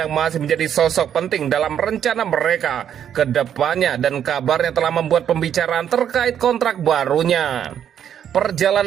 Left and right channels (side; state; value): left; quieter; 9.3 dB